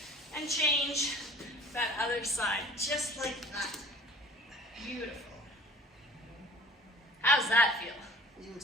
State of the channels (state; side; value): normal; both; correlation 0.46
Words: and change that other side. Just like that. Beautiful. How's that feel?